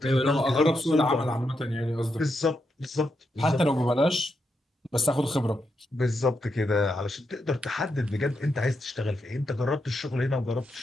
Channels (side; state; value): both; normal; correlation 0.83